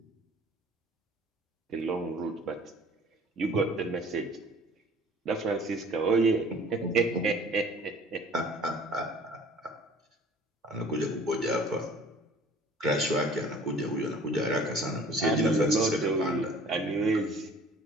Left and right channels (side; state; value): both; normal; correlation 0.50